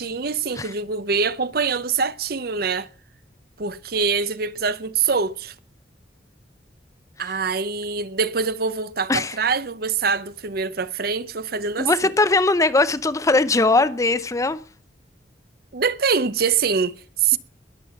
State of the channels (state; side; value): normal; both; correlation 0.16